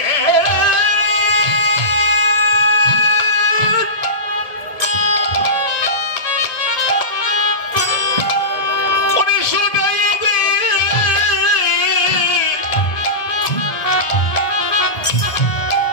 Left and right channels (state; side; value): late; right; 1.7 ms